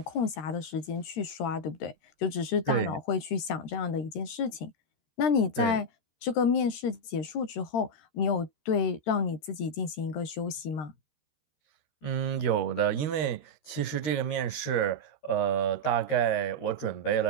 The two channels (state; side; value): late; right; 13 ms